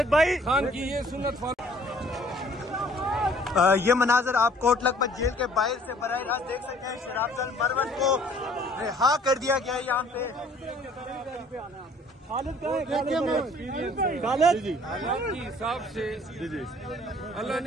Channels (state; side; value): normal; both; correlation 0.56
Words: بھائی خان کی یہ سنت یہ مناظر آپ کوٹ لکھپت جیل کے باہر سے براہ راست دیکھ سکتے ہیں. شیر افضل مروت کو رہا کر دیا گیا ہے یہاں پہ. کے حساب سے اللہ